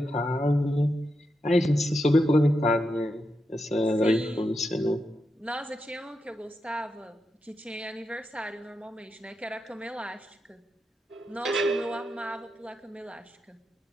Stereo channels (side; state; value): both; normal; correlation 0.86